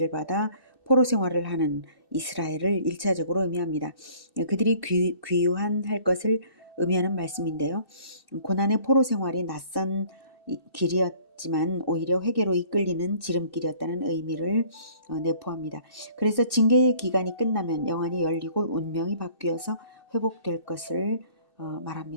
받아 포로 생활을 하는 이스라엘을 1차적으로 의미합니다. 그들이 귀환할 것을 의미하는 말씀인데요. 고난의 포로 생활이 낯선 길이었지만 오히려 회개로 이끌리는 지름길이었다는 의미를 내포합니다. 그래서 징계의 기간이 끝나면 영안이 열리고 운명이 바뀌어서 회복될 것을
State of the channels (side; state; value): right; late; 2.6 ms